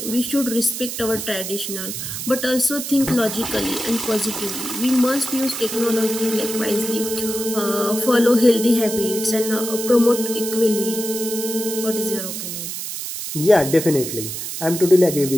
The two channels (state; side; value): noise; right; hiss, 6 dB below the sound